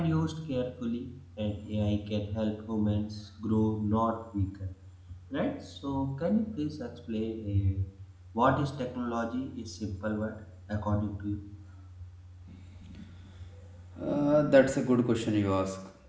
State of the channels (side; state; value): both; identical; correlation 1.00